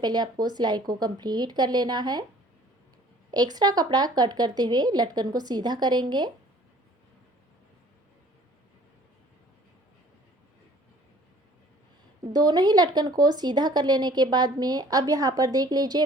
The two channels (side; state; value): both; normal; correlation 0.53